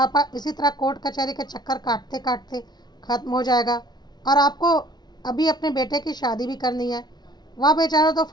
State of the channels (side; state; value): right; late; 0.20 ms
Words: इसी तरह कोर्ट कचहरी के चक्कर काटते काटते ख़त्म हो जाएगा और आपको अभी अपने बेटे की शादी भी करनी है। वह बेचारा तो